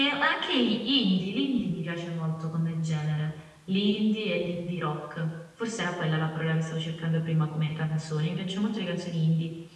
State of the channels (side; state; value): both; identical; correlation 1.00